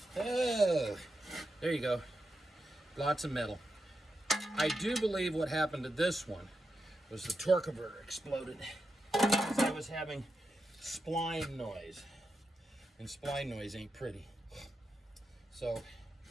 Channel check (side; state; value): both; normal; correlation 0.88